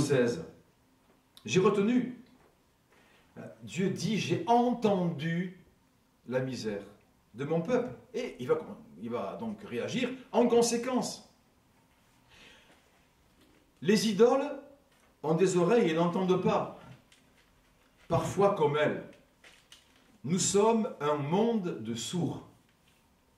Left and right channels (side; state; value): both; identical; correlation 1.00